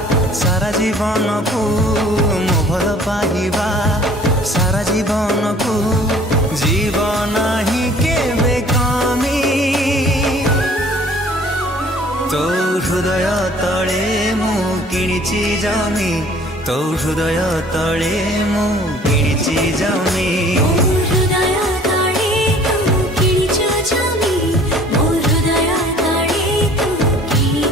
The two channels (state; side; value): normal; both; correlation 0.52